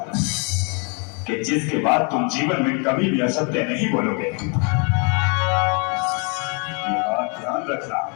कि जिसके बाद तुम जीवन में कभी भी असत्य नहीं बोलोगे। ये बात ध्यान रखना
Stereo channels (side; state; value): right; quieter; 35.8 dB